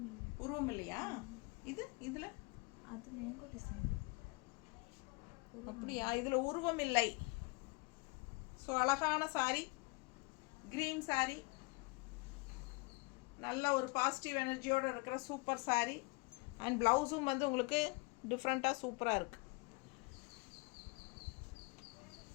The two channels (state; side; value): quieter; right; 28.0 dB